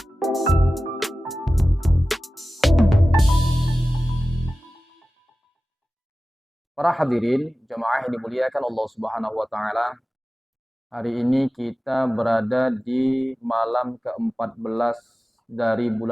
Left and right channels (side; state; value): both; normal; correlation 0.96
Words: Para hadirin, jemaah yang dimuliakan Allah Subhanahu wa taala. Hari ini kita berada di malam ke-14 dari